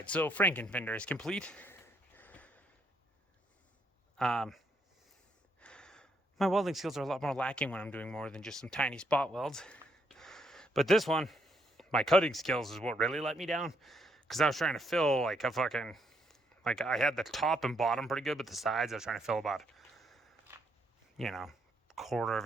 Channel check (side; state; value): both; normal; correlation 0.73